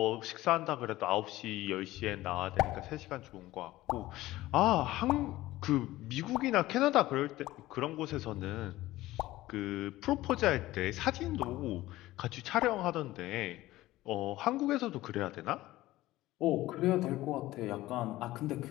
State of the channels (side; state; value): right; quieter; 16.8 dB